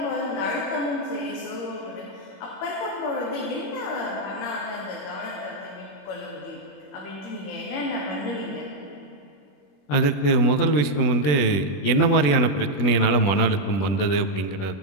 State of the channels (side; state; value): right; late; 21 ms